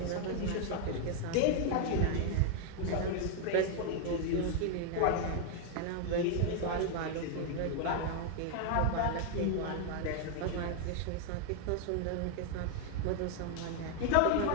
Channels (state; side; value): different; both; correlation 0.00